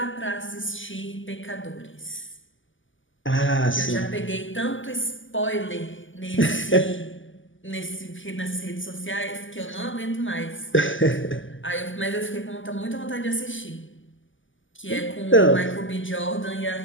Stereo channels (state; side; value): late; right; 0.57 ms